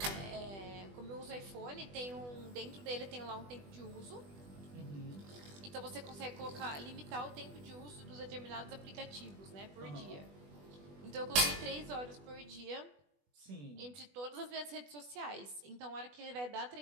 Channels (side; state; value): left; late; 20 ms